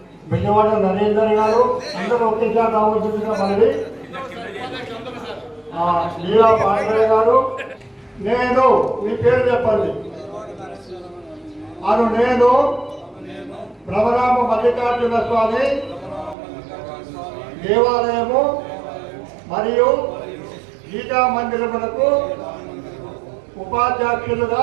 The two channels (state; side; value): drops out; left; at 16.4 s